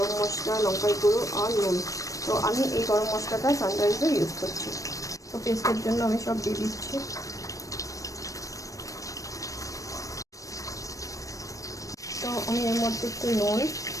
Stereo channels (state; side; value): late; right; 0.16 ms